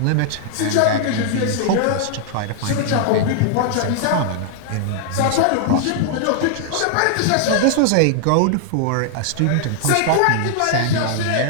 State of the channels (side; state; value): both; different; correlation 0.00